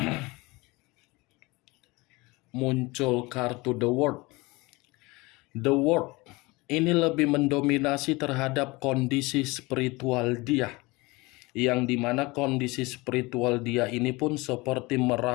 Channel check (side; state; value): right; quieter; 23.6 dB